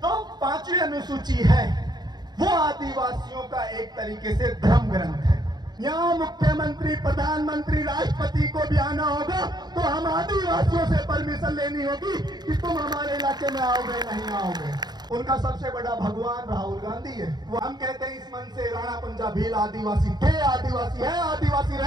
तो 5वीं अनुसूची है वो आदिवासियों का एक तरीके से धर्म ग्रंथ है। यहाँ मुख्यमंत्री, प्रधानमंत्री, राष्ट्रपति को भी आना होगा तो हम आदिवासियों से परमिशन लेनी होगी कि तुम हमारे इलाके में आओगे नहीं आओगे। उनका सबसे बड़ा भगवान राहुल गांधी है। वो हम कहते हैं इस मन से राणा पंजा भील आदिवासी थे, आदिवासी है, आदिवासी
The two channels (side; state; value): left; late; 0.20 ms